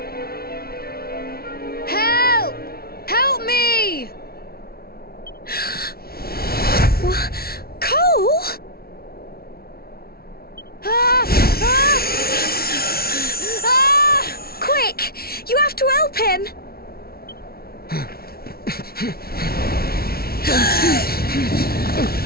Help! Help me! What? Cole? Ah! Ah! Ah! Quick! You have to help him!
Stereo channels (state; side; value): late; right; 0.44 ms